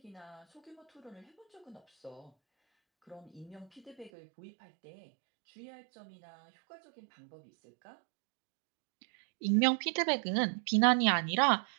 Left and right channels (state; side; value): drops out; left; at 4.1 s